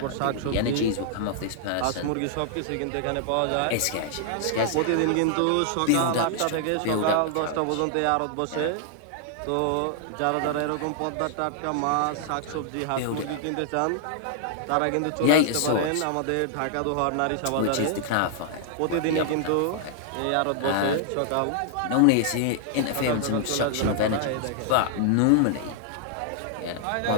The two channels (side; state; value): both; different; correlation -0.01